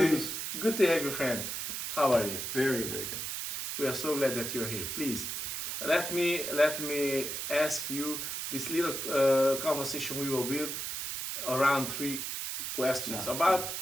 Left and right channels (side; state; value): right; noise; hiss, 4 dB below the sound